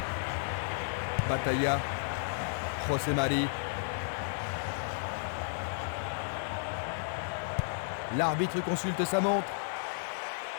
Batalla, José Mari. L'arbitre consulte sa montre.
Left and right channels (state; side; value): silent; right; digital silence